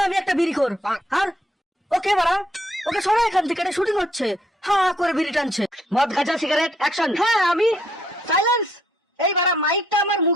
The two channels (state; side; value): normal; both; correlation 0.70